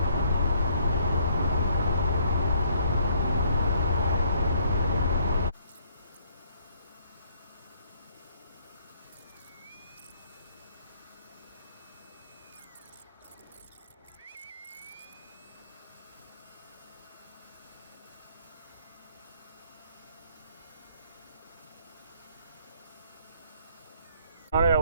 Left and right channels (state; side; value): inverted; both; correlation -0.65